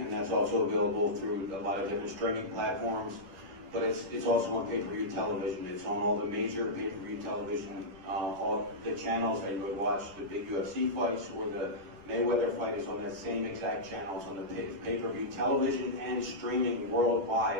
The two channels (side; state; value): left; late; 11 ms